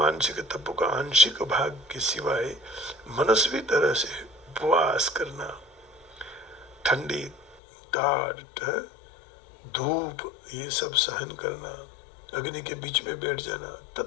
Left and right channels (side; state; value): right; drops out; at 7.6 s